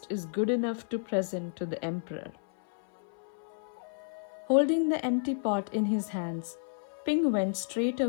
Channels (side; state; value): right; silent; 55 dB below the other